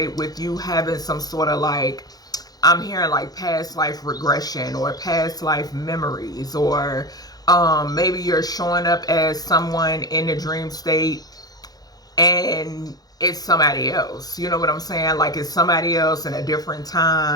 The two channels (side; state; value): right; late; 0.19 ms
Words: with you having some sort of like, I'm hearing like past life regression or past life memories, or maybe you're showing up as someone in the dream state and it's somebody else. You know what I'm saying? Like it's somebody else in a different